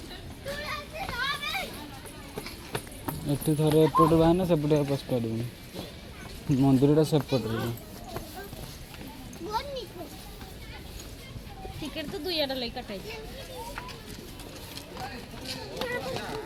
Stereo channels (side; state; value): both; identical; correlation 1.00